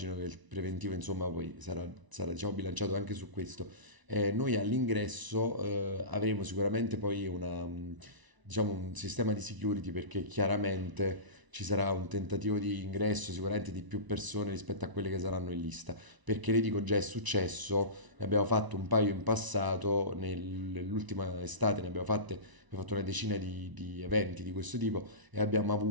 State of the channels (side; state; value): left; late; 1.0 ms